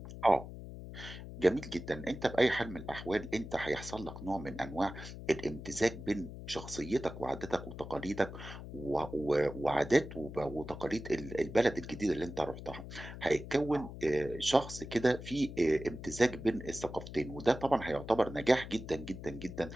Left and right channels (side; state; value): left; noise; hum, 11 dB below the sound